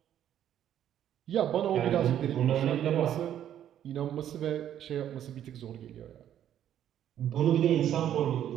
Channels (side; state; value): left; quieter; 10.6 dB